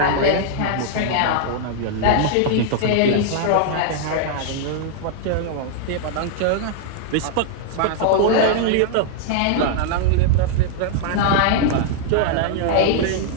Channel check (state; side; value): different; both; correlation -0.01